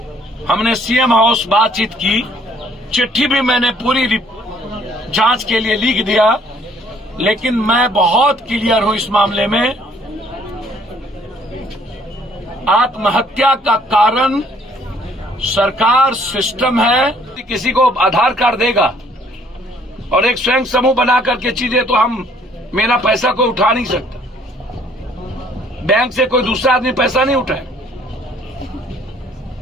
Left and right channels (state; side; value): normal; both; correlation 0.61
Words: हमने सीएम हाउस बातचीत की। चिट्ठी भी मैंने पूरी जांच के लिए लिख दिया, लेकिन मैं बहुत क्लियर हूं इस मामले में। आत्महत्या का कारण सरकार, सिस्टम है। किसी को आधार कार्ड देगा और एक स्वयं समूह बना करके चीजें, तो हम, मेरा पैसा कोई उठा नहीं सकता। बैंक से कोई दूसरा आदमी पैसा नहीं उठाए।